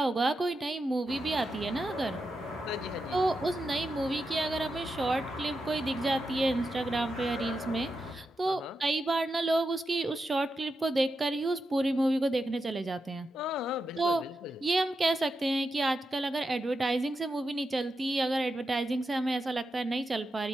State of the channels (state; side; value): normal; both; correlation 0.88